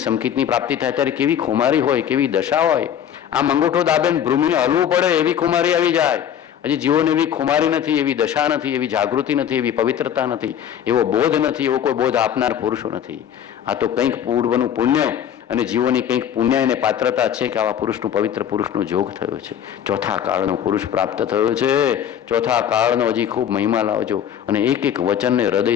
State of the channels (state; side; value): quieter; right; 9.4 dB